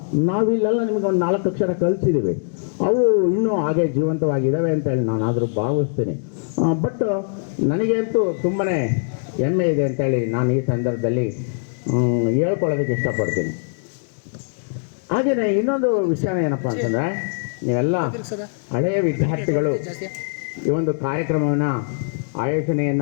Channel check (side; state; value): right; silent; digital silence